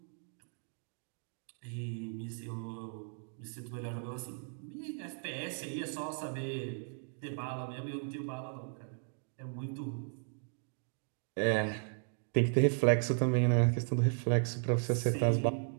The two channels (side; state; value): left; silent; 54 dB below the other